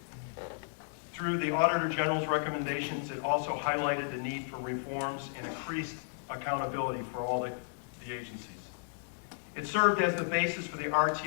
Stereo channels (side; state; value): right; silent; digital silence